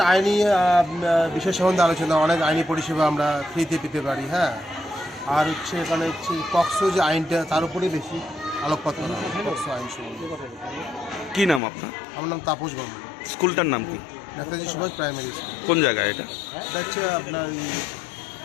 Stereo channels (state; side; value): drops out; right; at 11.6 s